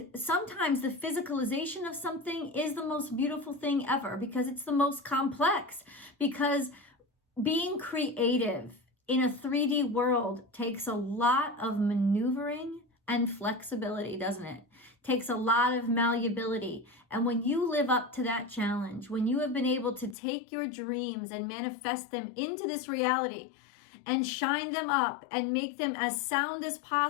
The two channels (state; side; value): drops out; right; at 20.2 s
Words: sometimes the physicalization of something is the most beautiful thing ever, because it's the most complex. Because being creative in a 3D world takes a lot of maneuvering and flexibility, doesn't it? Takes a lot of malleability. And when you live up to that challenge, when you have been able to take your dreams and manifest them into this reality and shine them up and make them as sound as